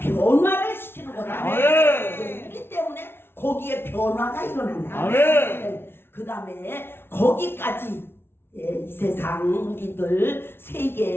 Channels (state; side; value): late; right; 0.11 ms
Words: 시키는 거다. 아멘. 우리 때문에 거기에 변화가 일어난다. 아멘. 그 다음에 거기까지 이 세상 우리들